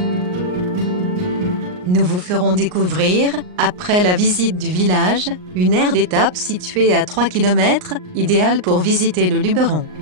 Nous vous ferons découvrir, après la visite du village, une aire d'étape située à 3 km, idéale pour visiter le Luberon.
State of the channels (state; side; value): late; left; 39 ms